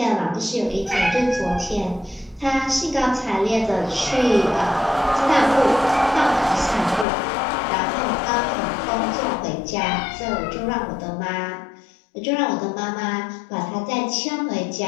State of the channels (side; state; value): right; drops out; at 7.1 s